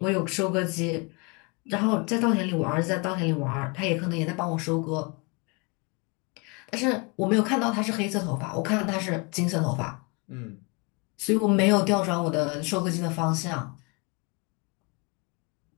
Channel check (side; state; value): right; quieter; 30.3 dB